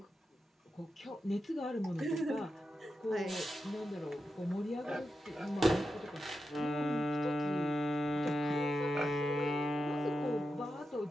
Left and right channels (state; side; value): normal; both; correlation 0.89